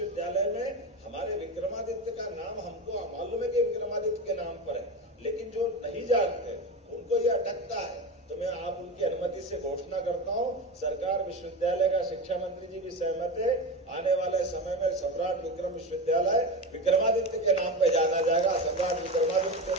में हमारे विक्रमादित्य का नाम हमको मालूम है कि विक्रमादित्य के नाम पर है, लेकिन जो नहीं जानते उनको ये अटकता है। तो मैं आप उनकी अनुमति से घोषणा करता हूँ, सरकार विश्वविद्यालय का शिक्षा मंत्री जी भी सहमत है, आने वाले समय में सम्राट विक्रम विश्वविद्यालय विक्रमादित्य के नाम पर जाना जाएगा। सम्राट विक्रमादित्य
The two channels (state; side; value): normal; both; correlation 0.22